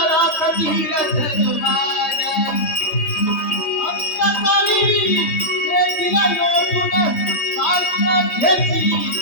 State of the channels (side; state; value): right; late; 3.2 ms